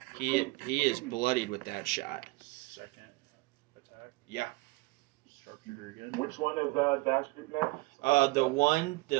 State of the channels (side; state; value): left; quieter; 23.1 dB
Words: He is bloodied with that shot. Second attack. Yeah. Sharpshooter again. Which one is Dash shooting at? The one